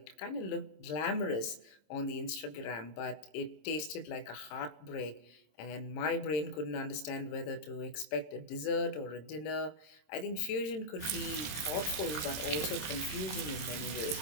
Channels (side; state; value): right; late; 26 ms